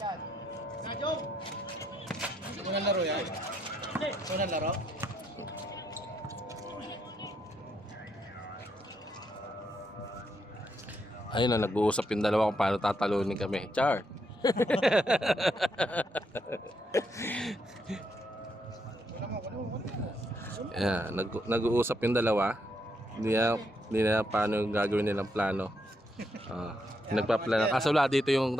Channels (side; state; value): both; normal; correlation 0.77